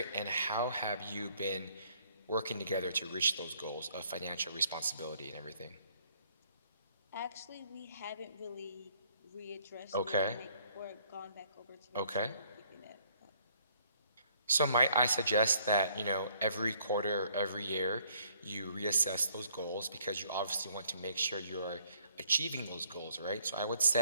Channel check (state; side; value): inverted; both; correlation -0.64